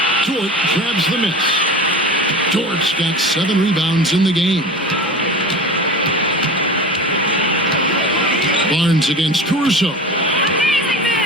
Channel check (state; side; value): normal; both; correlation 0.33